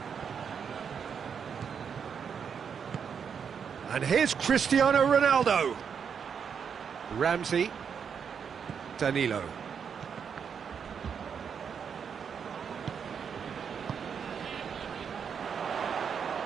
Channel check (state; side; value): quieter; left; 7.0 dB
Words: And here's Cristiano Ronaldo. Ramsey.